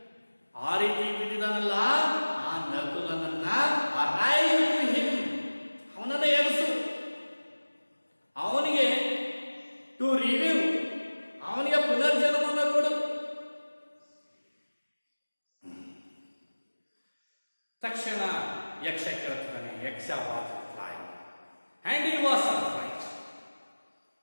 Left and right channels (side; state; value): both; inverted; correlation -1.00